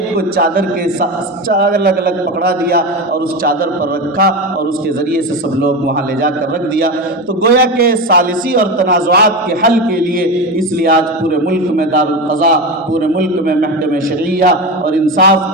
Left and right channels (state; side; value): normal; both; correlation 0.20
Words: کو چادر کے ساتھ الگ الگ پکڑا دیا اور اس چادر پر رکھا اور اس کے ذریعے سے سب لوگ وہاں لے جا کر رکھ دیا۔ تو گویا کہ ثالثی اور تنازعات کے حل کے لیے اس لیے آج پورے ملک میں دارالقضاء، پورے ملک میں محکمہ شرعیہ اور انصاف